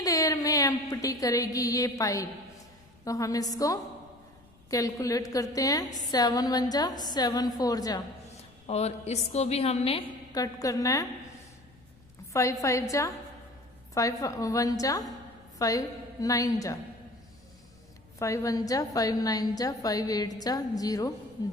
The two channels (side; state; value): left; noise; rumble, 28 dB below the sound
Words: देर में एम्प्टी करेगी ये पाइप? तो हम इसको कैलकुलेट करते हैं. 7 1 जा 7 4 जा, और इसको भी हमने कट करना है. 5 5 जा 5 1 जा 5 9 जा 5 1 जा 5 9 जा 5 8 जा 0